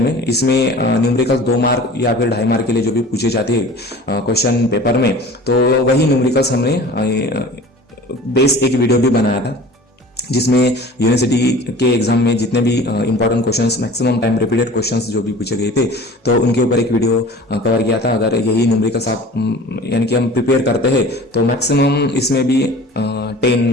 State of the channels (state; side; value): normal; both; correlation 0.42